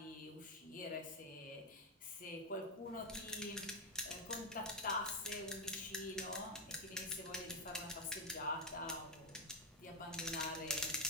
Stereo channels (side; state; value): both; normal; correlation 0.04